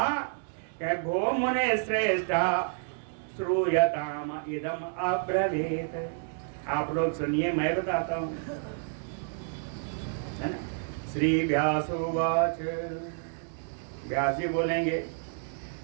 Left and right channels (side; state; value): left; silent; digital silence